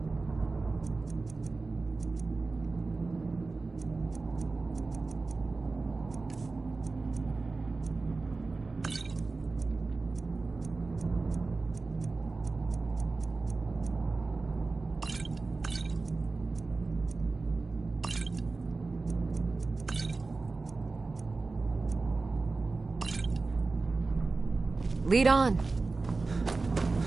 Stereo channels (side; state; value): left; quieter; 3.8 dB